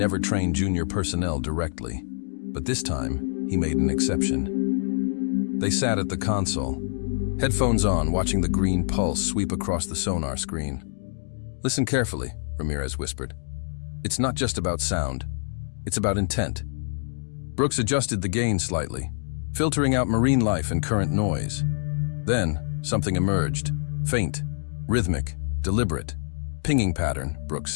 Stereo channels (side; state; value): right; silent; digital silence